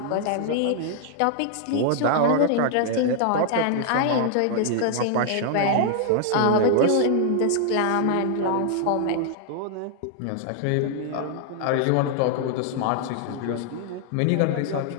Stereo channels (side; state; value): both; different; correlation 0.00